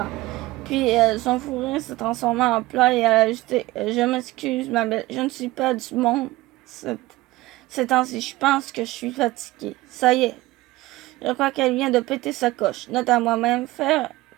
». Puis son fou rire s'est transformé en pleurs et elle a ajouté « Je m'excuse ma belle, je ne suis pas du monde ces temps-ci. Je pense que je suis fatiguée. Ça y est, je crois qu'elle vient de péter sa coche. Note à moi-même, faire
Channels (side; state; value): left; quieter; 18.7 dB